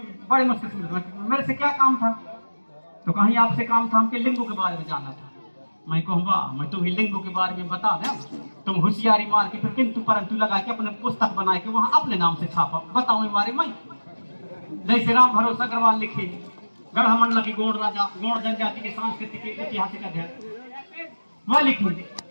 बड़े मुश्किल से मेरे से क्या काम था तो कहीं आपसे काम था हमके लिंगों के बारे में जानना था। मैं कहूँगा मैं तुम्हें लिंगों के बारे में बता दें तुम होशियारी मार के फिर किंतु परंतु लगा के अपने पुस्तक बना के वहां अपने नाम से छापा बताओ हमारे मैं जैसे राम भरोसा अग्रवाल लिखे गढ़मंडला की गौड़ राजा गौड़ जनजाति के सांस्कृतिक ऐतिहासिक अध्ययन वह लिखेंगे।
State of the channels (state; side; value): inverted; both; correlation -1.00